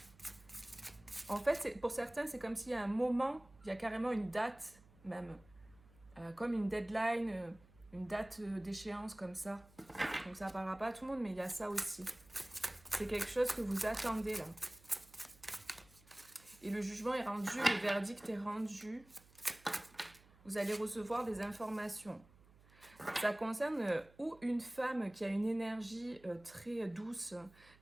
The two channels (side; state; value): right; noise; hum, 26 dB below the sound